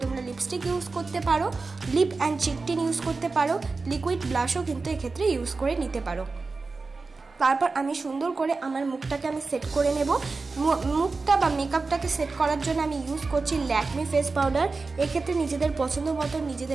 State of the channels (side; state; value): left; quieter; 4.0 dB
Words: তোমরা লিপস্টিক ইউজ করতে পারো, lip and cheek tint use করতে পারো, লিকুইড ব্লাশও কিন্তু এক্ষেত্রে ইউজ করে নিতে পারো। তারপর আমি সুন্দর করে আমার মুখটাকে আমি সেট করে নেব। মুখটা বা মেকআপটাকে সেট করার জন্য আমি ইউজ করছি ল্যাকমি ফেস পাউডার। এক্ষেত্রে নিজেদের পছন্দ মতো